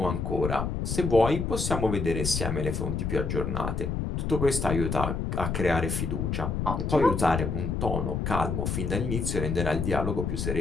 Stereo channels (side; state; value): left; noise; rumble, 1 dB below the sound